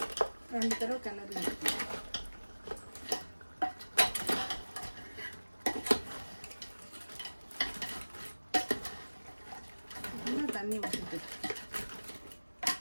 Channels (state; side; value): inverted; both; correlation -1.00